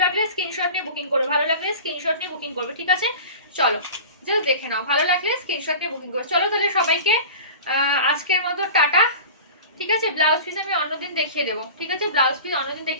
লাগলে স্ক্রিনশট নিয়ে বুকিং করবে, ভালো লাগলে স্ক্রিনশট নিয়ে বুকিং করবে, ঠিক আছে। চলো জাস্ট দেখে নাও, ভালো লাগলে স্ক্রিনশট নিয়ে বুকিং করবে। চলো তাহলে সবাইকে আজকের মতো টাটা, ঠিক আছে। ব্লাউজ পিস আমি অন্যদিন দেখিয়ে দেবো, ঠিক আছে, ব্লাউজ পিস অন্যদিন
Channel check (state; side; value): inverted; both; correlation -0.36